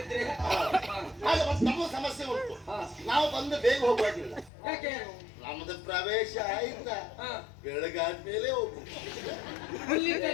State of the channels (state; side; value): drops out; right; at 4.5 s